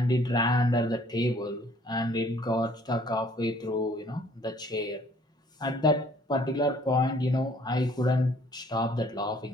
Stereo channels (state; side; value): normal; both; correlation 0.58